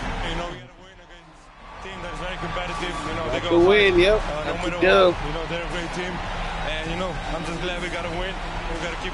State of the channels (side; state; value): both; identical; correlation 1.00